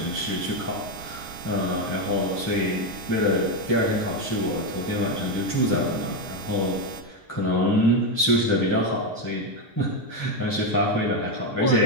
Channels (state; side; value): normal; both; correlation 0.08